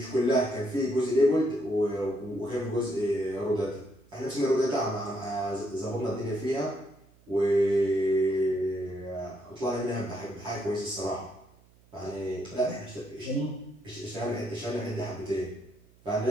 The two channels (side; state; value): right; noise; hum, 29 dB below the sound